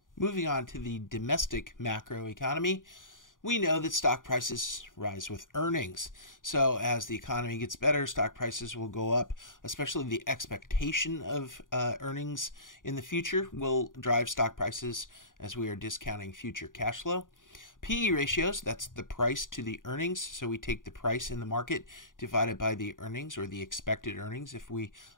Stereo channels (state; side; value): late; right; 0.89 ms